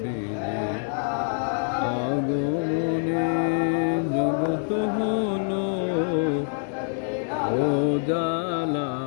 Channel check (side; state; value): right; silent; 61 dB below the other